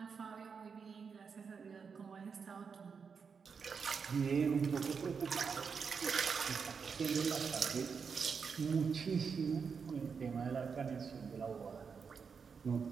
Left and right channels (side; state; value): left; quieter; 5.9 dB